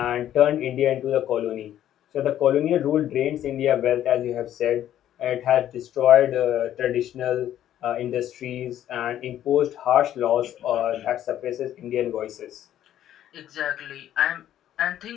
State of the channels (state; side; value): quieter; right; 11.6 dB